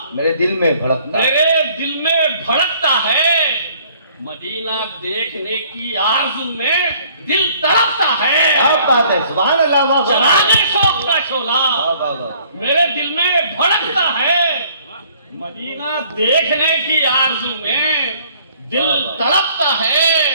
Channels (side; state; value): both; inverted; correlation -0.59